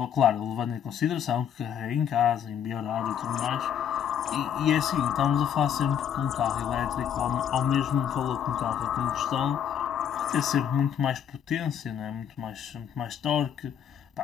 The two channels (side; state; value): right; quieter; 8.8 dB